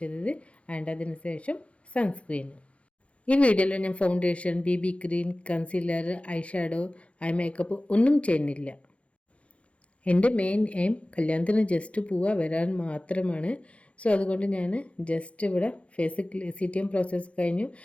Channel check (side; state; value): right; late; 0.062 ms